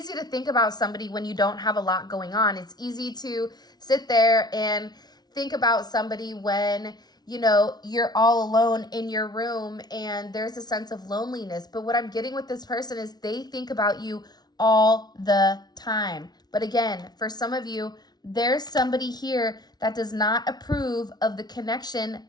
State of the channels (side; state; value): right; late; 0.19 ms